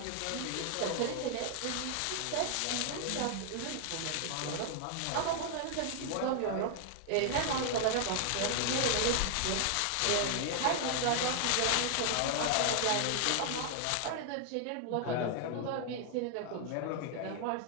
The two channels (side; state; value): both; different; correlation 0.00